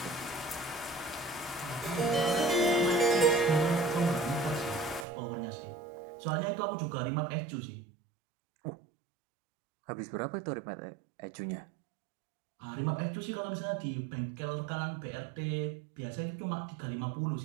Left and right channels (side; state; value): left; drops out; at 5.1 s